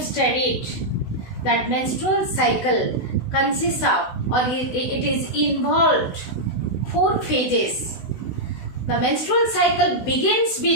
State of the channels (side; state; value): right; late; 16 ms